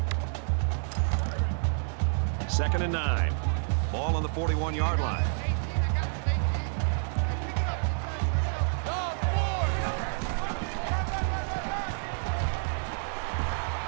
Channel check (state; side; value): silent; left; 59 dB below the other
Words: Second and 9. Ball on the 41-yard line.